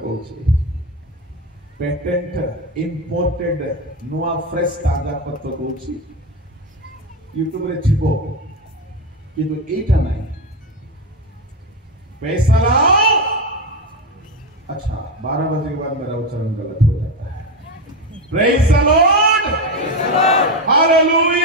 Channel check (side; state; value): both; normal; correlation 0.14